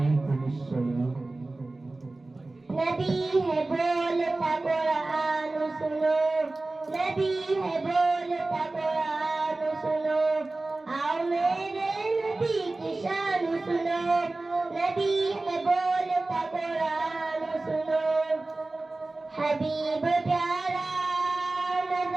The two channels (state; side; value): quieter; left; 3.1 dB